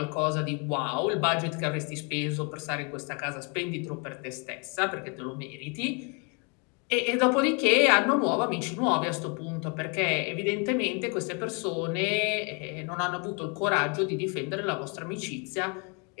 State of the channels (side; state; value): right; quieter; 34.5 dB